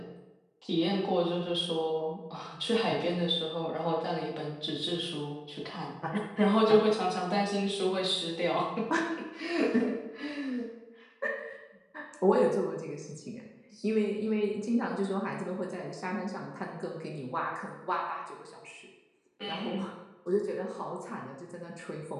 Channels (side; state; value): both; identical; correlation 1.00